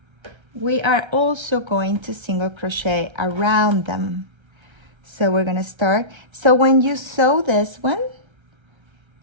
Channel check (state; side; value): late; left; 1.3 ms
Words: we are also going to single crochet around them. So we're gonna start. So when you sew this one,